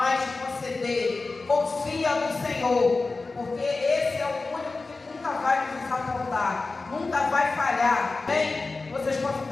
te conceder. Confia no Senhor, porque esse é o único que nunca vai nos desapontar, nunca vai falhar. Bem, vocês podem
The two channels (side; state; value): right; quieter; 3.7 dB